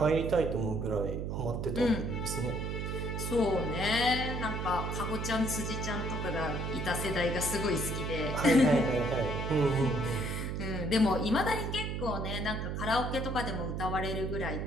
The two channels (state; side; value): noise; right; hum, 3 dB below the sound